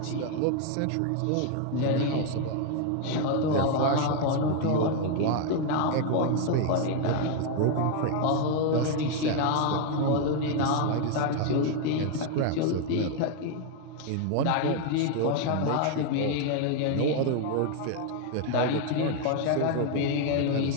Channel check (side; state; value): both; different; correlation 0.00